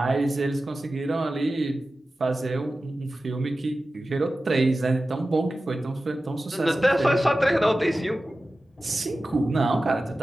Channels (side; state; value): both; normal; correlation 0.95